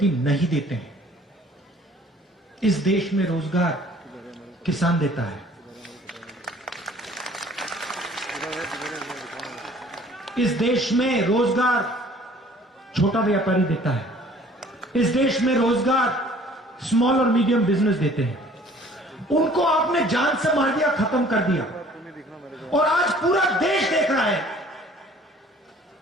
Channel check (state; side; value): normal; both; correlation 0.53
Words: नहीं देते हैं। इस देश में रोजगार किसान देता है। इस देश में रोजगार छोटा व्यापारी देता है। इस देश में रोजगार स्मॉल और मीडियम बिजनेस देते हैं। उनको आपने जान से मार दिया, खत्म कर दिया। और आज पूरा देश देख रहा है